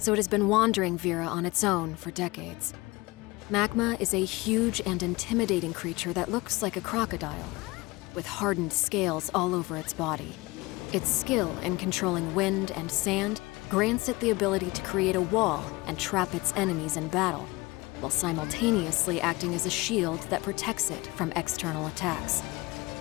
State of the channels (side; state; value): right; quieter; 22.5 dB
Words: it has been wandering Vera on its own for decades. Magma is a huge and intimidating creature that looks like a crocodile, with hardened scales all over its body. Its skill in controlling wind and sand grants it the ability to create a wall and trap its enemies in battle, while simultaneously acting as a shield that protects it from external attacks.